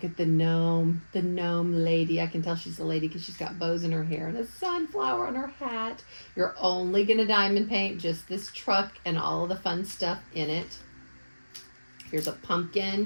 at the gnome lady. I can tell she's a lady because she's got bows in her hair and a sunflower on her hat. You're only going to diamond paint just this truck and all of the fun stuff in it. Here's a pumpkin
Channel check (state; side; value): inverted; both; correlation -1.00